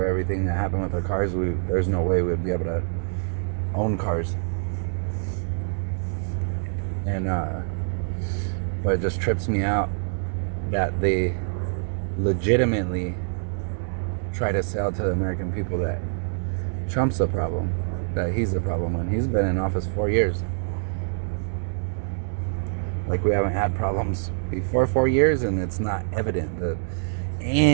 everything that happened with the cars, there's no way we'd be able to own cars. And but it just trips me out that they legitimately try to sell to the American people that Trump's the problem, that he's the problem, when he's been in office 4 years. Like, we haven't had problems before 4 years, and it's not evident that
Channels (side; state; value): left; silent; 61 dB below the other